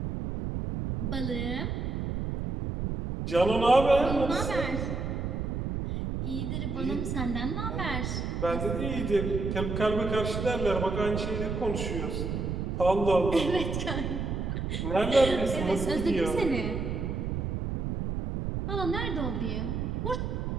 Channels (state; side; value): noise; right; rumble, 2 dB below the sound